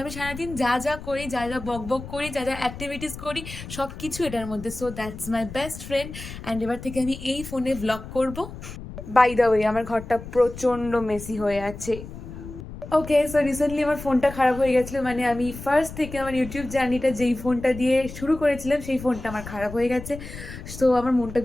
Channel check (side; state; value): left; noise; rumble, 12 dB below the sound